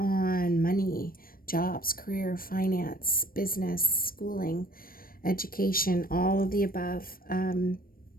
money, jobs, career, finance, business, schooling, education, all of the above.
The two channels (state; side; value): late; right; 0.42 ms